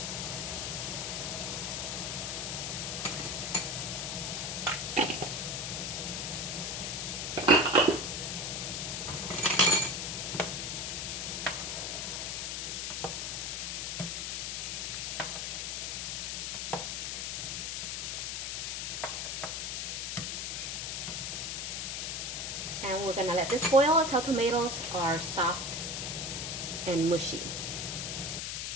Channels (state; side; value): noise; left; hiss, 2 dB below the sound